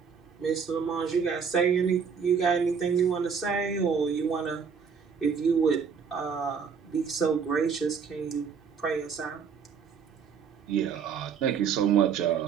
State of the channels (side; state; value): left; quieter; 6.4 dB